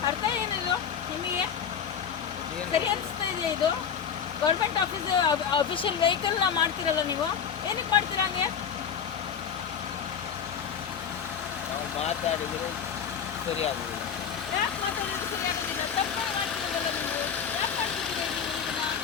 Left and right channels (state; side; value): quieter; right; 7.5 dB